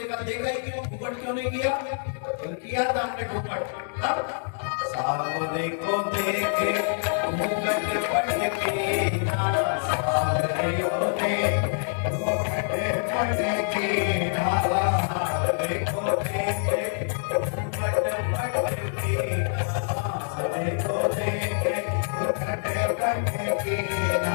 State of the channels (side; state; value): right; silent; digital silence